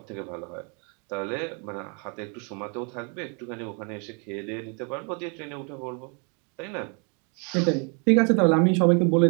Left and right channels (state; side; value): quieter; left; 36.5 dB